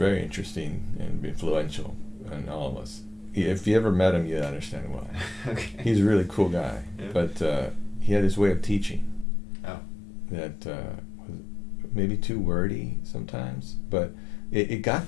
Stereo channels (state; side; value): drops out; right; at 9.2 s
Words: interesting and influential on all of us. If you ever met him, you'd understand why. Okay. He's a really cool guy, Yeah. but he had this way of teaching that was maybe too wordy sometimes, but it